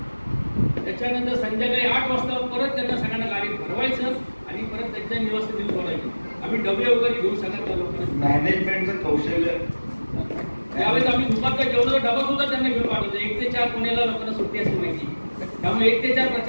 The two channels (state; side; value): inverted; both; correlation -1.00